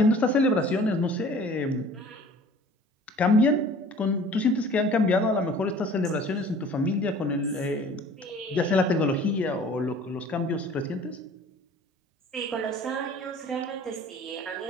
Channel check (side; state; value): both; normal; correlation 0.48